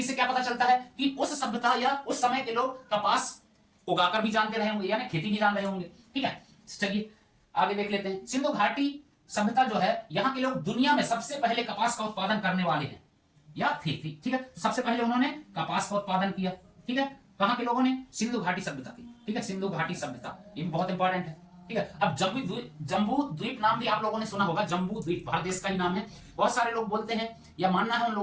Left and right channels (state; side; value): identical; both; correlation 1.00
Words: से क्या पता चलता है कि उस सभ्यता या उस समय के लोग कपास उगाकर भी जानते रहे होंगे, यानी खेती भी जान रहे होंगे, ठीक है। चलिए आगे देख लेते हैं। सिंधु घाटी सभ्यता जो है, यहाँ के लोग दुनिया में सबसे पहले कपास का उत्पादन करने वाले हैं या थी, ठीक है, सबसे पहले उन्होंने कपास का उत्पादन किया, ठीक है, कहां के लोगों ने? सिंधु घाटी सभ्यता की, ठीक है, सिंधु घाटी सभ्यता, ये बहुत इंपॉर्टेंट है, ठीक है। अब जम्बू द्वीप नाम भी आप लोगों ने सुना होगा, जम्बू द्वीप भारत देश का ही नाम है। बहुत सारे लोग बोलते हैं या मानना है उन